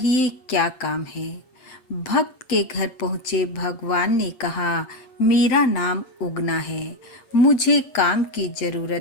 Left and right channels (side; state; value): right; late; 8.5 ms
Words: क्या काम है। भक्त के घर पहुंचे भगवान ने कहा, मेरा नाम उगना है, मुझे काम की